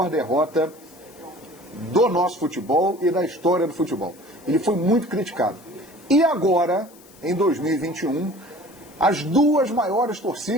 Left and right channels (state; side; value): noise; left; hiss, 25 dB below the sound